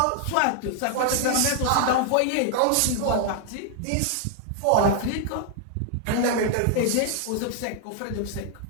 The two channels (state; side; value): different; both; correlation 0.00